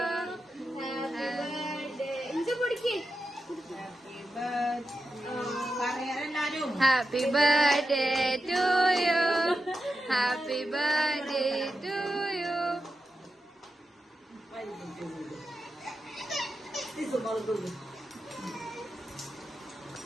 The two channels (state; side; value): normal; both; correlation 0.89